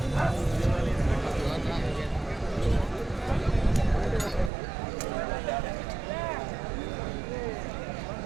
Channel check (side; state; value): left; drops out; at 4.5 s